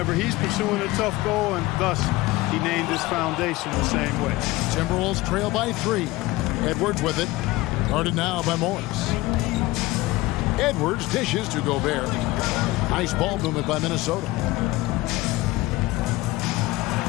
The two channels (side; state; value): right; quieter; 19.4 dB